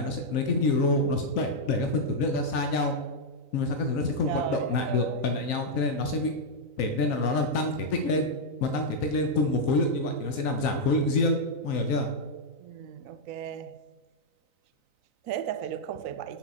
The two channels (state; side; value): late; right; 3.9 ms